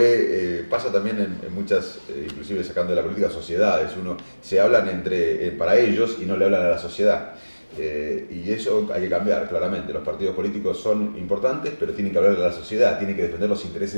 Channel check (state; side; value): inverted; both; correlation -1.00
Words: pasa también en muchas, inclusive sacando de la política, sociedades, se hablan para ellos y no le hablan a la sociedad. Y eso hay que cambiar, claramente. Los partidos políticos son importantes, pero tienen que hablar a la sociedad, tienen que defender los intereses